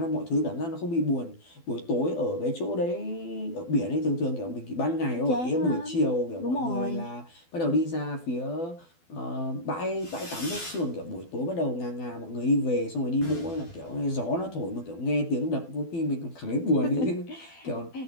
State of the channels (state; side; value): late; right; 12 ms